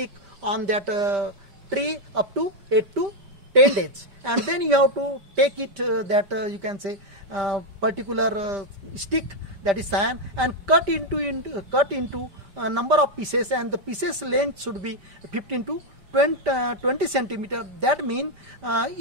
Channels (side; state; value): left; late; 5.1 ms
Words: on that tree up to 8 to 10 days, and then you have to take it that you can say particular stick, that is cyan, and cut into a number of pieces, and the pieces length should be 15 to 20 centimeter. That means